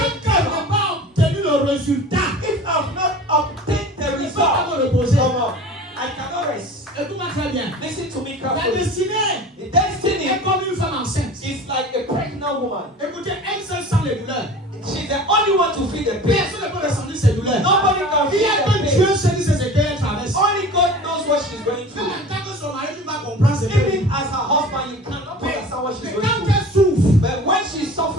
je n'ai pas obtenu le résultat, If I've not obtained the je ne peux pas result, me reposer. come on, I cannot rest. Écoute-moi très bien. Listen to me La carefully. destinée The destiny est comme une femme enceinte. is like a pregnant woman. Écoutez, elle seule sent les douleurs. She's the only one to feel the pain. Personne ne peut ressentir ses douleurs. Nobody can Il y a feel que the Dieu pain. seul qui sait ce qu'elle traverse. Only God knows what she's going Même through. en tant que son mari, tu vas comprendre ce qu'elle Even vit. as her husband, you cannot understand what she's Mais going quand through. elle souffre, But when she's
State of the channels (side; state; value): both; normal; correlation 0.39